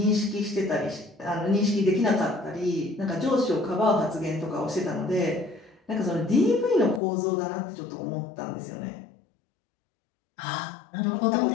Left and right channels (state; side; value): drops out; right; at 7.0 s